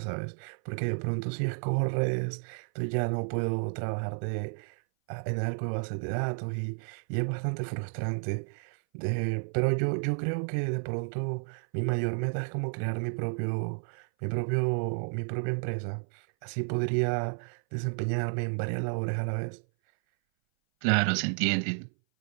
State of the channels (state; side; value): silent; left; 57 dB below the other